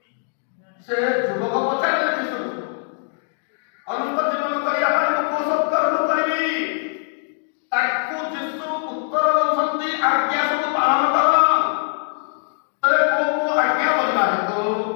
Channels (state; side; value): silent; right; digital silence